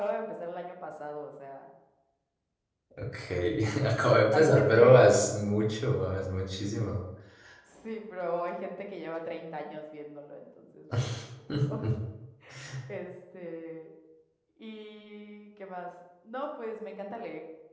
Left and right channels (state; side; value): identical; both; correlation 1.00